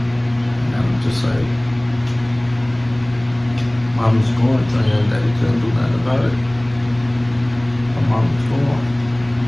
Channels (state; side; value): noise; right; hum, 21 dB below the sound